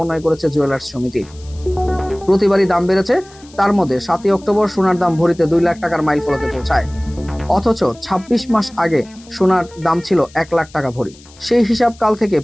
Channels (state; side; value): noise; left; hiss, 24 dB below the sound